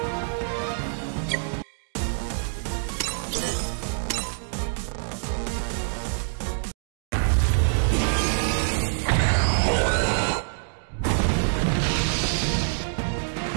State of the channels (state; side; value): silent; left; digital silence